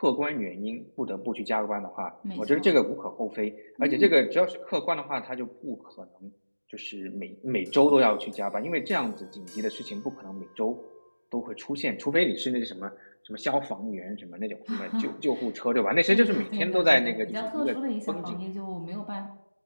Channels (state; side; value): inverted; both; correlation -1.00